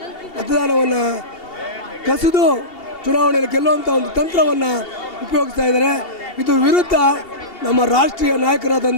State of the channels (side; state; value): right; late; 2.7 ms